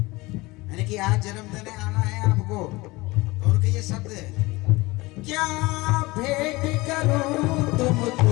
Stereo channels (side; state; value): right; quieter; 22.1 dB